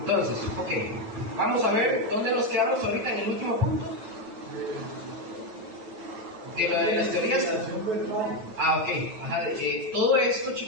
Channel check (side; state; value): left; late; 9.1 ms